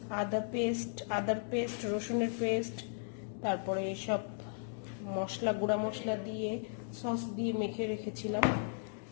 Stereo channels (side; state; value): right; silent; digital silence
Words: আদার পেস্ট, রসুনের পেস্ট, তারপরে সব মশলা, গুঁড়া মশলা দিয়ে সস দিয়ে মেখে রেখেছিলাম।